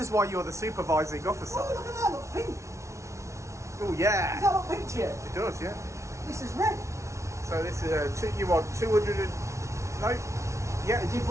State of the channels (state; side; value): late; left; 0.14 ms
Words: why you're the supervising officer. Oh, look at that, look pink. Oh, Does yeah. that look pink to you? It does, yeah. This is red. So this is you want 200 and no? Yeah. I did